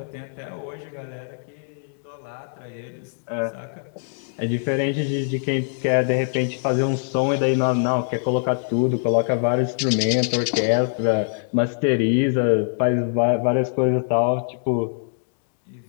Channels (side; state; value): right; silent; digital silence